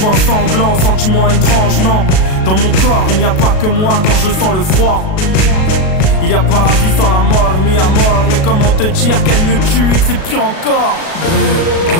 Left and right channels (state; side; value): late; right; 37 ms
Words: sanglants, sentiments étranges, non. Dans mon corps, il n'y a pas que moi quand je sens le froid. Il y a pas la vie sans la mort, mis à mort. Mais comment te dire qu'elle me tue et que c'est pire encore? Brûle,